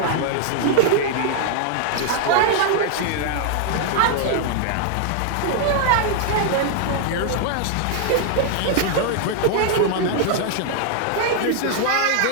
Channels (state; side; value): different; both; correlation 0.00